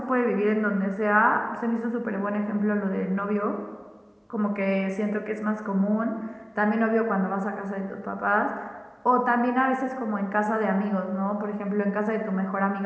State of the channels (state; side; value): identical; both; correlation 1.00